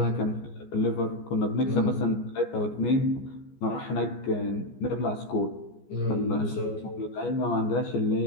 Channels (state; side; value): late; right; 14 ms